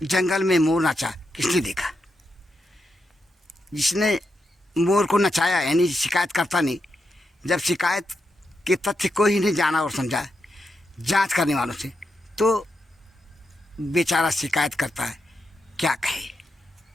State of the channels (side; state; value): both; normal; correlation 0.85